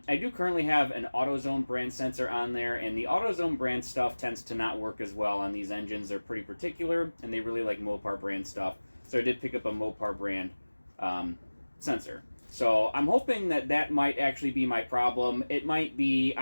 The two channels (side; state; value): both; inverted; correlation -1.00